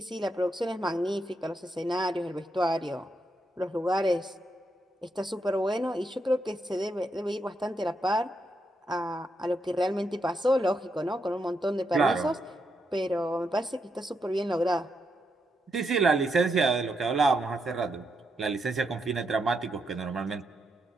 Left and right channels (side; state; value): both; normal; correlation 0.81